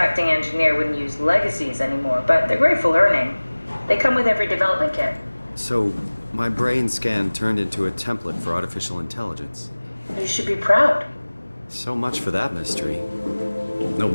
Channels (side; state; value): both; inverted; correlation -1.00